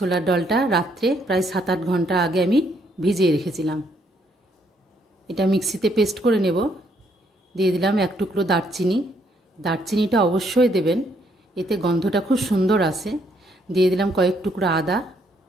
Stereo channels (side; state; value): both; normal; correlation 0.71